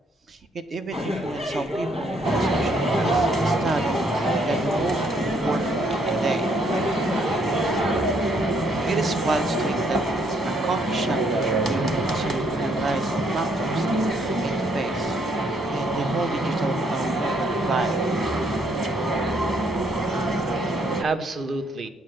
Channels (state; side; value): normal; both; correlation 0.69